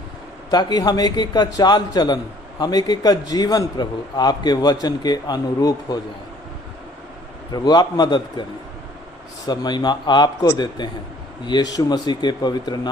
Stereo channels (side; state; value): both; normal; correlation 0.57